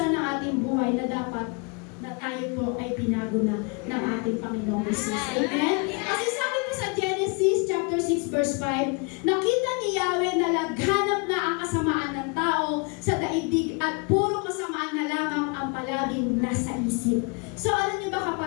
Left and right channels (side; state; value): right; quieter; 32.7 dB